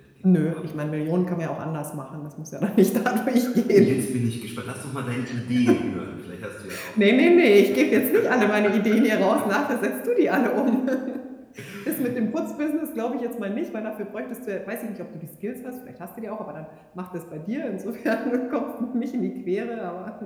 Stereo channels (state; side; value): identical; both; correlation 1.00